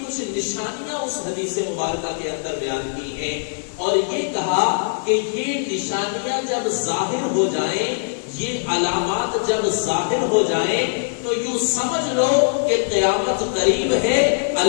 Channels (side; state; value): right; silent; digital silence